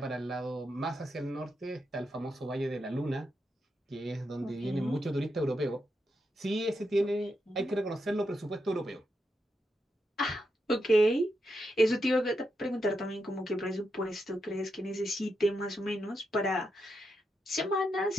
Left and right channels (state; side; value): normal; both; correlation 0.84